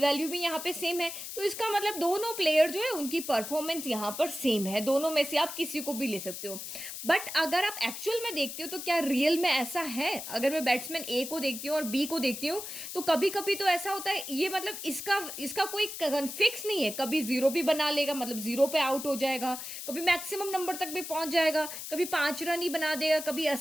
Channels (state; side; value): noise; left; hiss, 8 dB below the sound